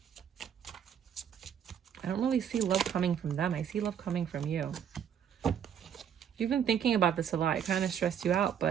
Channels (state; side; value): quieter; left; 8.6 dB